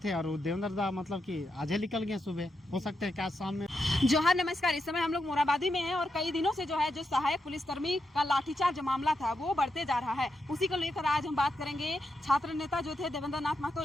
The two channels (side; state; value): both; normal; correlation 0.85